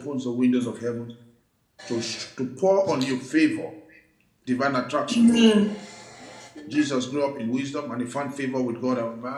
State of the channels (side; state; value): both; identical; correlation 1.00